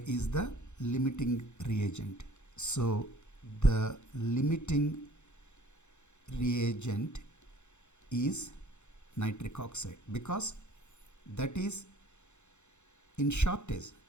is the limiting reagent. So the limiting reagent is nitric oxide, because that is in shortage.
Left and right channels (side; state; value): right; late; 0.83 ms